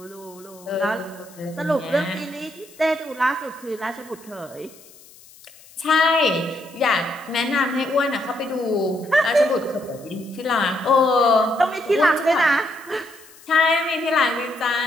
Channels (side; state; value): left; noise; hiss, 23 dB below the sound